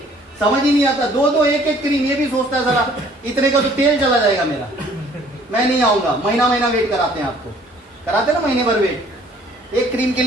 समझ ही नहीं आता, 2 1 क्रीम, ये भी सोचता है जरा इतने का तो तेल चला जाएगा मेरा, मैं नहीं आऊंगा। महीना वेट कराते हैं आपको, कराते ना महीने भर वेट। 1 क्रीम के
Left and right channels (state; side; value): normal; both; correlation 0.57